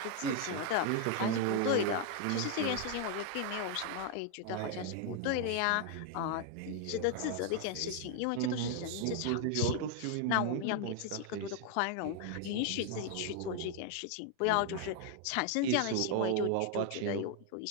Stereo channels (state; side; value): different; both; correlation 0.00